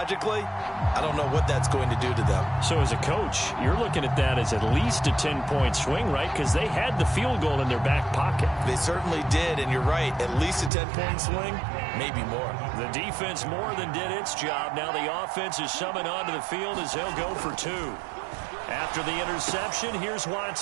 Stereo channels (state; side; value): drops out; left; at 10.7 s